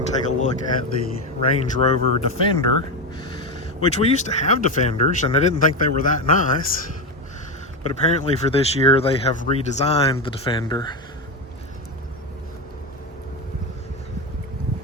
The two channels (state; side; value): normal; both; correlation 0.13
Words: take a look at the Range Rover Defender, which we used to have Defenders, and I didn't think they were that nice. But apparently for this year, they have redesigned the Defender.